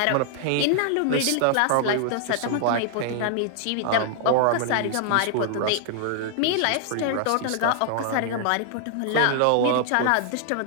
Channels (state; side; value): different; both; correlation 0.00